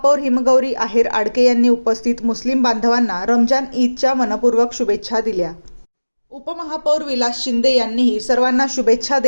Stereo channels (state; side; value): inverted; both; correlation -1.00